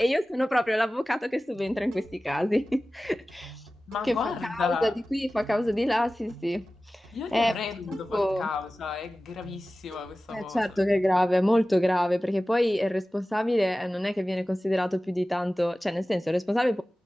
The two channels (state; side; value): normal; both; correlation 0.96